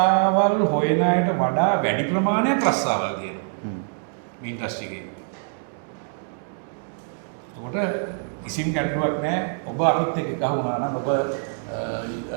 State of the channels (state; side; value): silent; left; digital silence